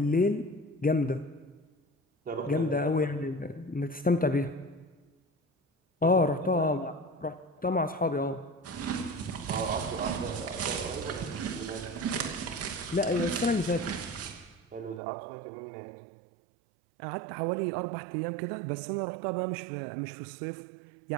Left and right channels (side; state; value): left; drops out; at 15.0 s